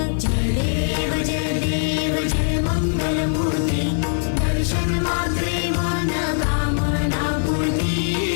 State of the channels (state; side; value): silent; right; digital silence